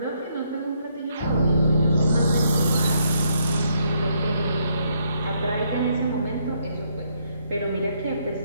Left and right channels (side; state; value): both; inverted; correlation -0.73